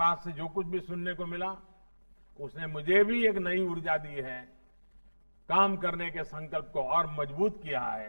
से जो कुछ भी सुनने को मिला, उसने मुझे भी एक नई ऊर्जा दी है, काम करने के संकल्प को और मजबूत किया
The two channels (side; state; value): both; inverted; correlation -1.00